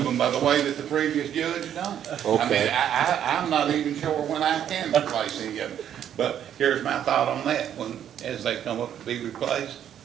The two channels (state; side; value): quieter; left; 9.9 dB